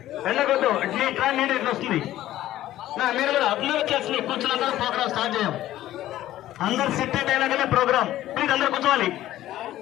వెళ్ళకొద్దు. ఇట్లా నీళ్ళు ఇట్లా వస్తుంది. మీరు కూడా అందరూ వచ్చేసి కూర్చున్న ప్రోగ్రామ్ స్టార్ట్ చేయం. అందరు సెట్ అయినాకనే ప్రోగ్రామ్. ప్లీజ్ అందరూ కూర్చోవాలి.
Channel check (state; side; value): quieter; right; 14.0 dB